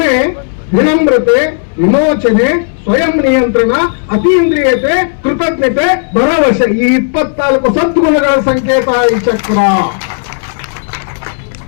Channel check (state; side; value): silent; right; digital silence